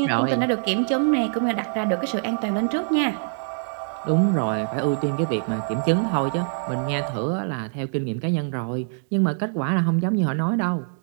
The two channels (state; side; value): silent; left; digital silence